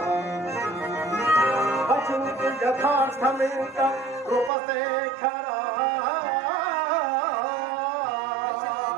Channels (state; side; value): drops out; left; at 4.5 s